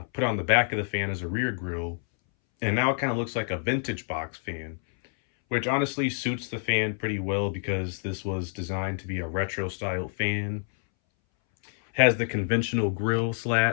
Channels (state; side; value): silent; right; 60 dB below the other